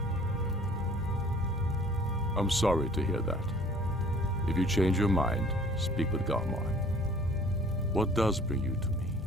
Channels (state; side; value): normal; both; correlation 0.52